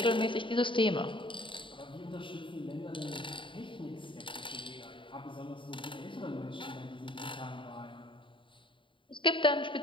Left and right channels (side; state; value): right; late; 0.24 ms